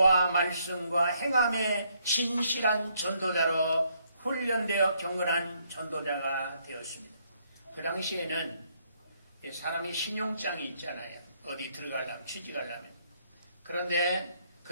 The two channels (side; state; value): both; inverted; correlation -0.71